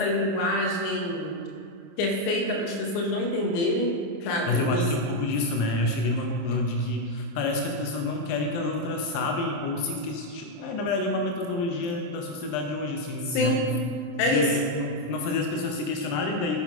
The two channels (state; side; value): late; right; 27 ms